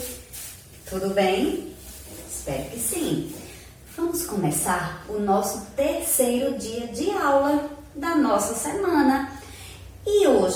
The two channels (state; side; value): identical; both; correlation 1.00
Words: tudo bem? Espero que sim. Vamos começar o nosso terceiro dia de aula da nossa semana e